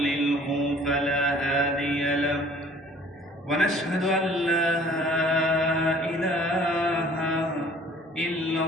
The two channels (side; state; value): both; normal; correlation 0.52